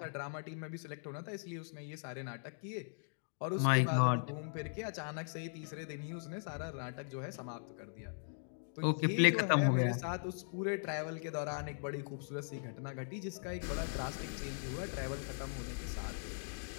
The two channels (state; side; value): silent; right; digital silence